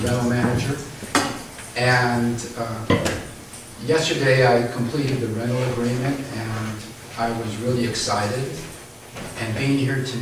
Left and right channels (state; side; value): identical; both; correlation 1.00